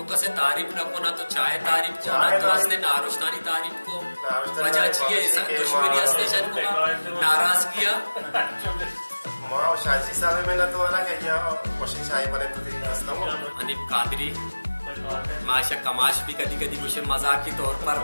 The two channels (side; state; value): both; inverted; correlation -1.00